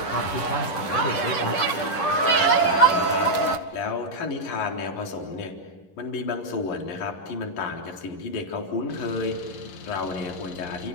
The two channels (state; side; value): late; right; 11 ms